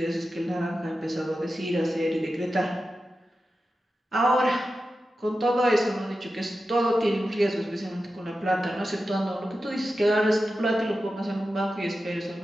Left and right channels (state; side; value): normal; both; correlation 0.92